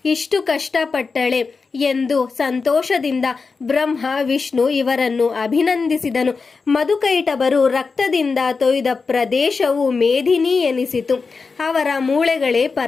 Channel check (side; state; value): right; quieter; 4.6 dB